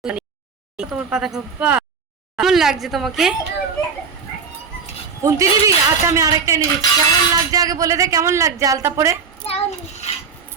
তোমার পাতা খাবা। কেমন লাগছে তোমাকে? কুন্তি দিদি, আচ্ছা আমি আরেকটা এনে দিচ্ছি। কেমন লাগছে আগে বলে দে, কেমন লাগছে আলতা পরে?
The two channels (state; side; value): quieter; left; 5.7 dB